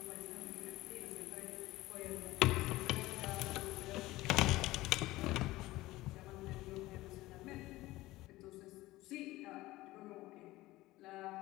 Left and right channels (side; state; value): right; quieter; 18.2 dB